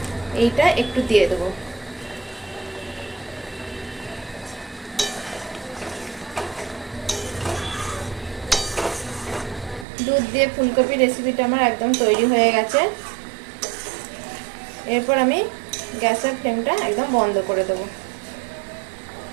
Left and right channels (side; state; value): left; drops out; at 9.9 s